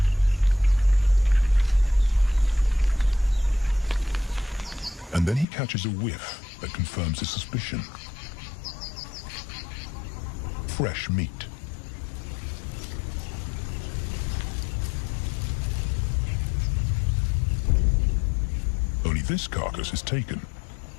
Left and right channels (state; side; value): drops out; right; at 5.5 s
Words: And then he catches a whiff that confirms his suspicion. Fresh meat. Only this carcass is taken.